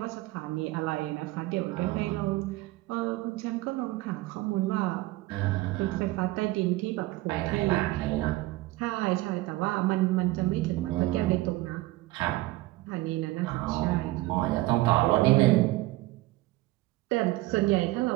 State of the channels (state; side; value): quieter; left; 18.9 dB